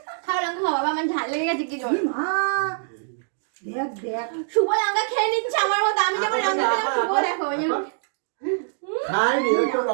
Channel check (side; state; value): left; silent; digital silence